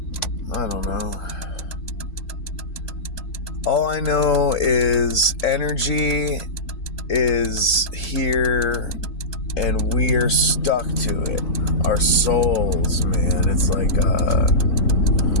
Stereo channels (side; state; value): right; late; 4.5 ms